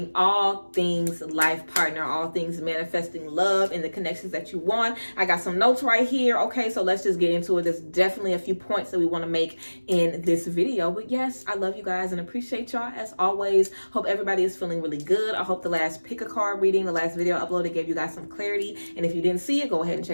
all things life partner, all things manifesting love and the connections that you want. I got some notes right here. Okay, so let's just get into it. There's definitely a few points that we want to make in this video. But yes, I love you guys and appreciate y'all as always. Hope everybody is feeling really good. I hope the last pick a card reading, the last video uploaded, gave you guys some clarity. And if you didn't see it, go ahead and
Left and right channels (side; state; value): both; inverted; correlation -1.00